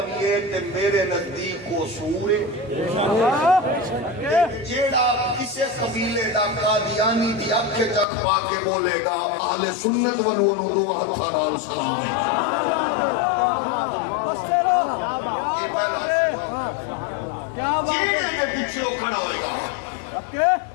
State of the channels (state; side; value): drops out; right; at 8.1 s